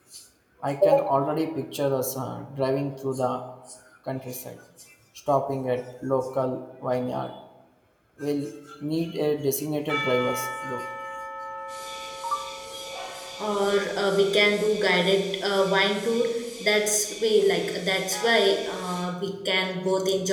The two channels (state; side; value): identical; both; correlation 1.00